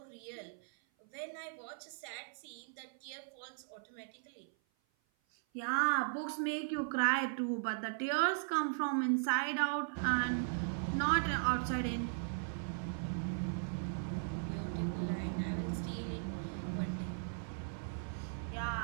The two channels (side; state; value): left; silent; 52 dB below the other